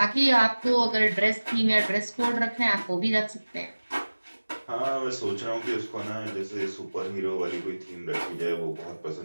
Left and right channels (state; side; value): inverted; both; correlation -1.00